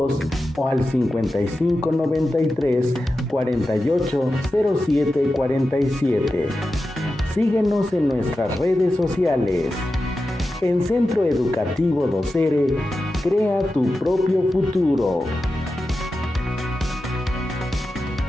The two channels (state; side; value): normal; both; correlation 0.92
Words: o al 5593 4807 47. Síguenos en nuestras redes sociales. En Centro Educativo Docere, crea tu propio futuro.